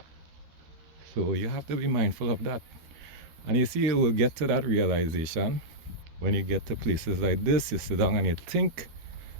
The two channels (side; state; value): left; late; 13 ms